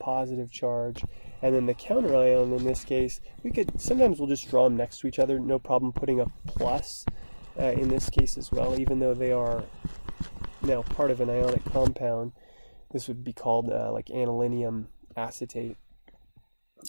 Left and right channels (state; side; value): inverted; both; correlation -1.00